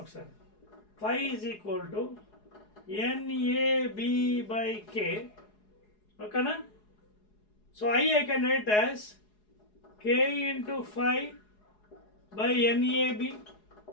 ఒకసారి. phi is equal to NAB by K, ఓకేనా. So I can write as K into phi by NAB.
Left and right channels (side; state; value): right; late; 4.8 ms